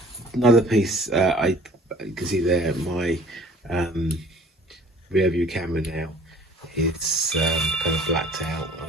Another piece, you can see there my rear view camera now. It's kind of blacked out. I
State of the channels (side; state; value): both; normal; correlation 0.51